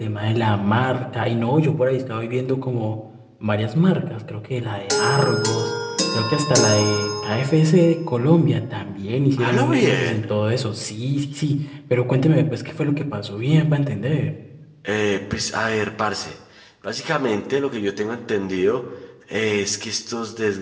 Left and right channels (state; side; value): identical; both; correlation 1.00